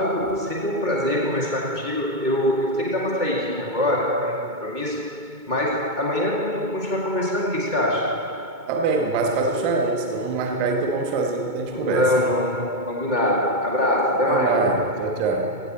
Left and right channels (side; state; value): left; late; 2.2 ms